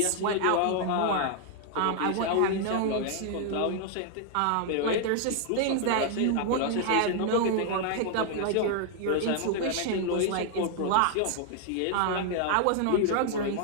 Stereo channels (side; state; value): both; different; correlation 0.00